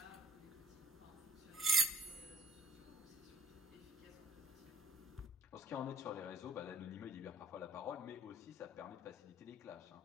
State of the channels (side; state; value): both; normal; correlation 0.55